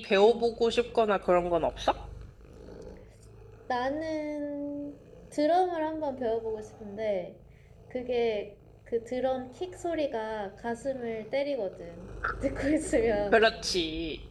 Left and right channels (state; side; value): identical; both; correlation 1.00